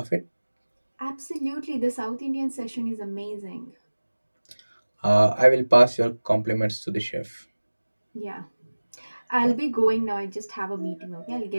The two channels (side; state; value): both; inverted; correlation -1.00